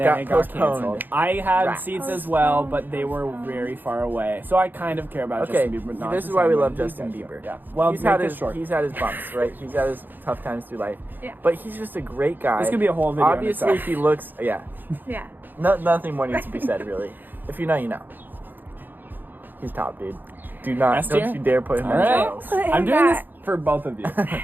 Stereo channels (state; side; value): late; left; 0.090 ms